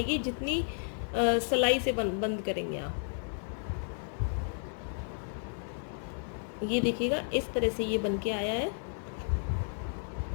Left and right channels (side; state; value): right; silent; 56 dB below the other